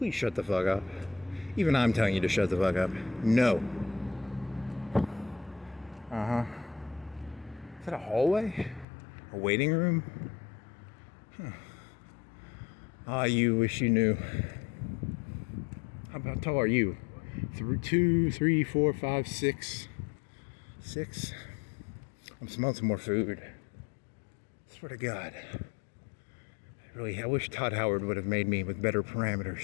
shut the fuck up. Even I'm telling you to shut the fuck up. No. Is that a hallway? A waiting room? You wish you knew. How tall are you? 2, 3, 4, 5, 6. 6? I'm smelling some more food. Swear to God. I wish Todd Howard would have made me with better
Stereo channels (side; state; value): right; drops out; at 8.8 s